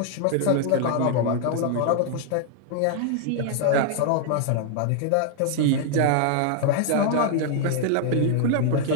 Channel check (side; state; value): both; different; correlation 0.00